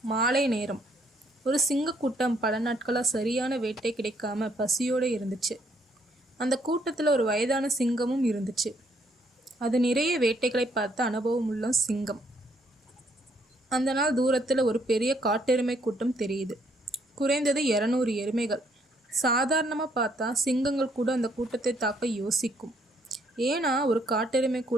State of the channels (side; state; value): both; normal; correlation 0.69